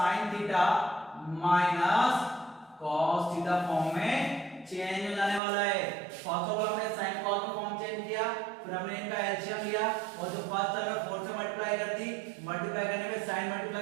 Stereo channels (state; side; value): drops out; left; at 5.4 s